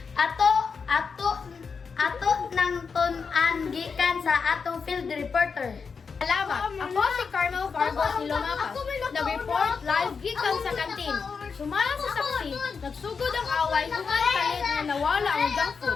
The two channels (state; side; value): quieter; right; 5.4 dB